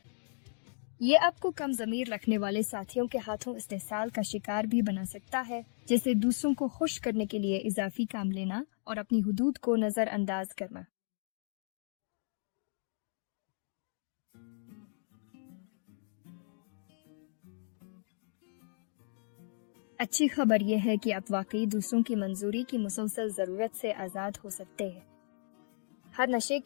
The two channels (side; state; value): right; silent; digital silence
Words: یہ آپ کو کم ضمیر رکھنے والے ساتھیوں کے ہاتھوں استحصال کا شکار بھی بنا سکتا ہے، جیسے دوسروں کو خوش کرنے کے لیے اضافی کام لینا اور اپنی حدود کو نظر انداز کرنا۔ اچھی خبر یہ ہے کہ آپ واقعی دوسروں کی منظوری کی مسلسل ضرورت سے آزاد ہو سکتے ہیں۔ ہر نشے